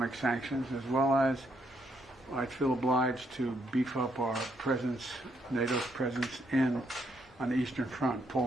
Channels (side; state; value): both; normal; correlation 0.75